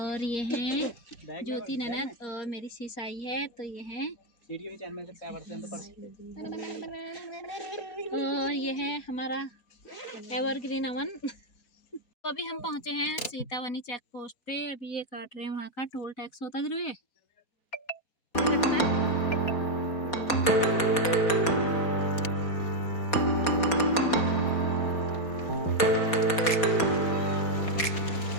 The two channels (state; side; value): late; right; 4.2 ms